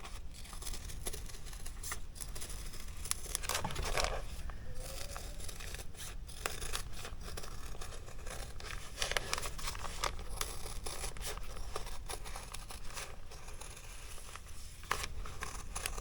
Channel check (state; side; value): identical; both; correlation 1.00